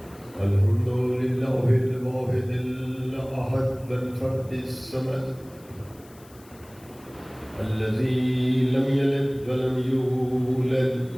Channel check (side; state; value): left; noise; hiss, 26 dB below the sound